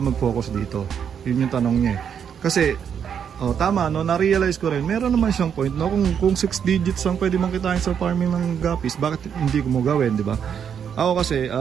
mag-focus dito? Yun yung tanong niya. Kasi tama no, na-realize ko rin, meron naman siyang point no, kung 6 digits ang pwede mong kitain sa farming ng gapis, bakit hindi ko mo gawin, di ba? Ako kasi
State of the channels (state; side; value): quieter; left; 7.9 dB